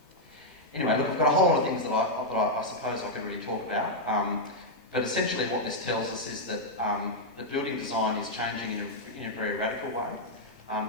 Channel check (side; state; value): both; normal; correlation -0.03